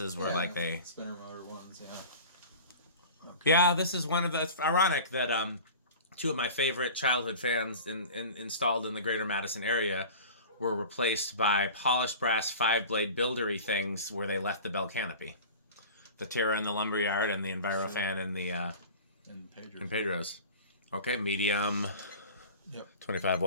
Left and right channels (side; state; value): both; inverted; correlation -0.37